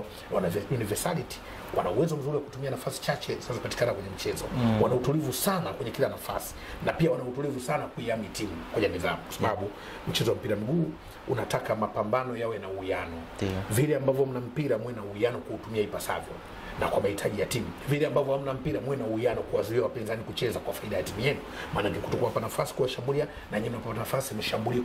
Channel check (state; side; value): identical; both; correlation 1.00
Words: wana universality, wana uwezo mzuri wa kutumia nafasi chache zinazopatikana kwenye mchezo. Wana utulivu sana kwenye kila nafasi, na pia wana utulivu sana kuiami timu kwenye nidhamu, kwa sababu mchezo wa mpira miguu unataka mapambano yawe na uwiano. Vile ambavyo mna mpira mwe na uwiano kuutumia ipasavyo na kwa mahitaji ya timu. Vile ambavyo hamna mpira mwe na uwiano kuwazuia wapinzani kucheza kwa faida ya timu yenu. Maana yake kutokuwapa nafasi kuwashambulia, na nyinyi mnapata nafasi mshambulie